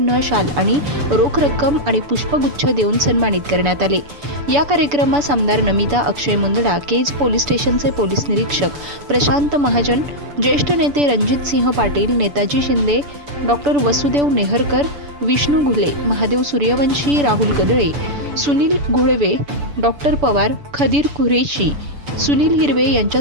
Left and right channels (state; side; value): late; left; 6.9 ms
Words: शाल आणि रोख रक्कम आणि पुष्पगुच्छ देऊन सन्मानित करण्यात आले। या कार्यक्रमास आमदार नमिता अक्षय मुंदडा, केज पोलीस स्टेशनचे पोलीस निरीक्षक प्रशांत महाजन, ज्येष्ठ नेते रणजित सिंह पाटील, नेताजी शिंदे, डॉक्टर वसुदेव नेहरकर, विष्णू घुले, महादेव सूर्यवंशी, राहुल गदळे, सुनील घोळवे, डॉक्टर पवार, खदीर कुरेशी, सुनील हिरवे